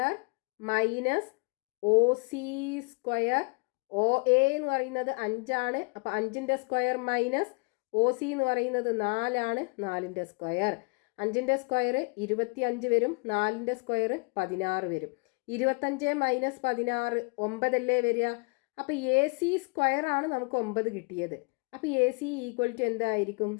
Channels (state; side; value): quieter; right; 32.5 dB